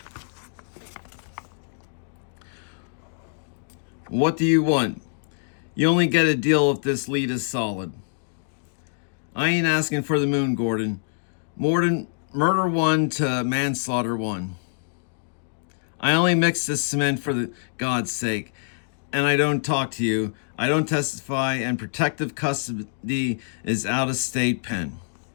What do you want? You only get a deal if this lead is solid. I ain't asking for the moon, Gordon. Murder 1 to manslaughter 1. I only mix the cement for God's sake, and I don't talk to you. I don't testify, and protective custody is out of state pen.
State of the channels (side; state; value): right; silent; digital silence